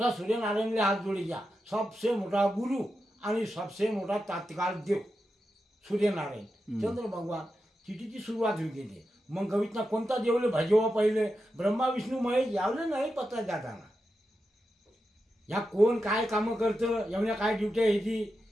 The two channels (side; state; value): both; normal; correlation 0.89